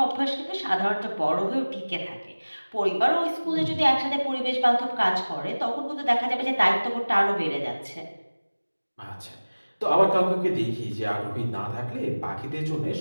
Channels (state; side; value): inverted; both; correlation -1.00